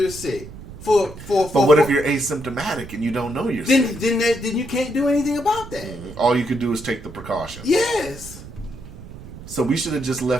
sick, but what if you're asymptomatic and you don't know you're sick? Then you can't do anything about that. All you could do is take the precautions. Yes. So we should have just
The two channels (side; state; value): right; noise; rumble, 15 dB below the sound